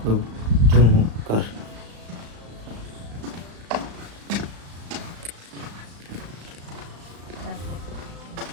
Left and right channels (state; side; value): late; left; 35 ms